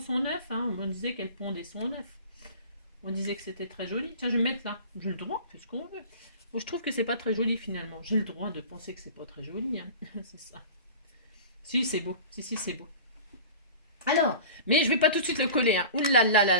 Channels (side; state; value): both; inverted; correlation -0.39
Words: œuf, hein. On disait qu'elle pondait son œuf. On disait que c'était très joli. Tiens, je vais me mettre là. J'ai le droit, c'est ce qu'on veut. Bon, je trouve que c'est pas très joli finalement. J'ai le droit de penser que c'est pas très joli, hein. C'est ça. Si, c'est beau. Si, c'est beau. Alors, mais je vais pas tout de suite le coller, hein. Ouh là là là